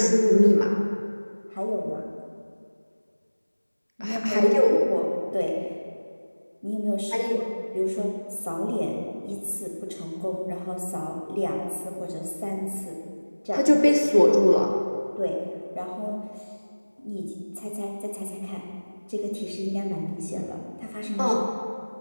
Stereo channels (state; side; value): inverted; both; correlation -1.00